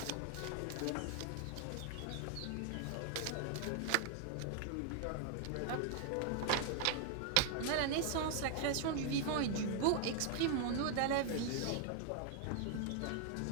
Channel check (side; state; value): both; different; correlation 0.00